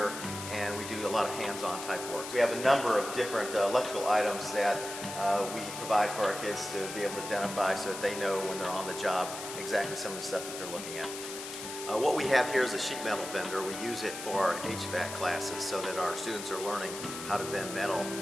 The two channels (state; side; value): noise; left; hiss, 9 dB below the sound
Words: and we do a lot of hands-on type work. We have a number of different electrical items that we provide for our kids to be able to identify, so that they know when they're on the job exactly some of the stuff that they're looking at. What we have here is a sheet metal bender. We use it for our HVAC classes so that our students are learning how to bend metal